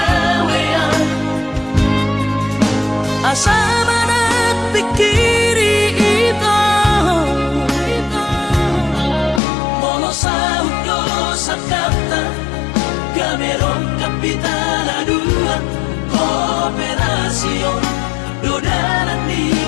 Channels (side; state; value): right; drops out; at 9.4 s